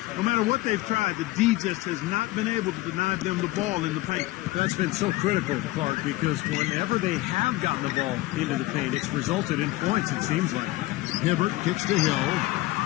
No matter what they've tried, the D just has not been able to deny them the ball in the paint. That's been so critical, Clark, because whenever they have gotten the ball into the paint, it's resulted in points, it seems like. Hibbert kicks to Hill.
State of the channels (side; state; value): right; quieter; 18.5 dB